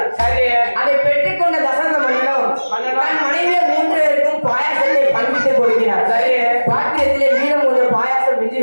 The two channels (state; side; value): inverted; both; correlation -1.00